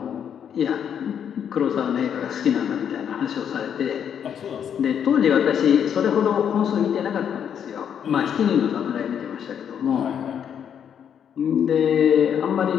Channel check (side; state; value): right; quieter; 8.4 dB